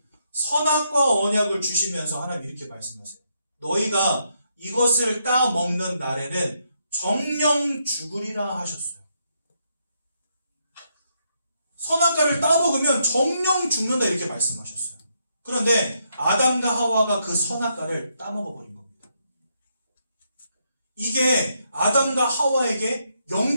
선악과 언약을 주시면서 하나님 이렇게 말씀하세요. 너희가 이것을 따먹는 날에는 정령 죽으리라 하셨어요. 선악과를 따먹으면 정령 죽는다 이렇게 말씀하셨어요. 그런데 아담과 하와가 그 선악과를 따먹어버린 겁니다. 이게 아담과 하와에게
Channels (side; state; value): both; inverted; correlation -0.77